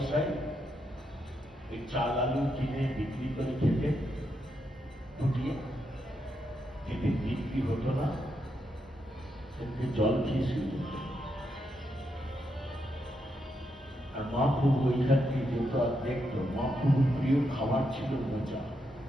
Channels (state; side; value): normal; both; correlation 0.81